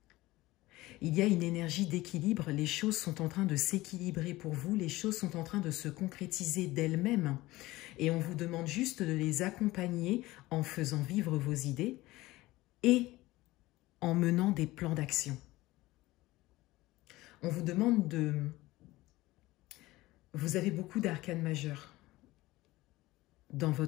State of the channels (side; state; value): right; quieter; 18.6 dB